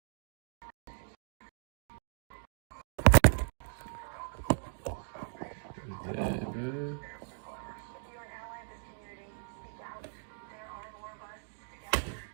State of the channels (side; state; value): left; silent; digital silence